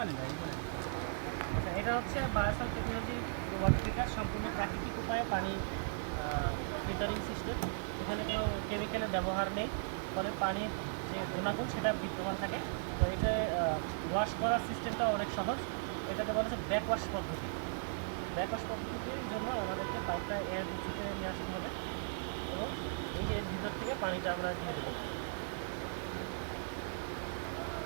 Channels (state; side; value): silent; left; digital silence